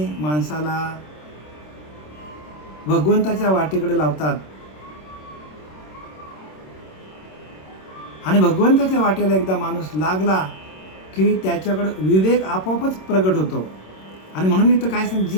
माणसाला भगवंताच्या वाटेकडे लावतात आणि भगवंताच्या वाटेला एकदा माणूस लागला की त्याच्याकडे विवेक आपोआपच प्रगट होतो. आणि म्हणून इथं काय सांग,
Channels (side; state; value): right; late; 26 ms